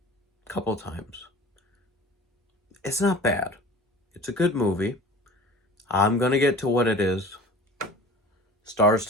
a couple of times. It's not bad. It's a good movie. I'm gonna get to what it is. Stars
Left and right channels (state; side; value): normal; both; correlation 0.41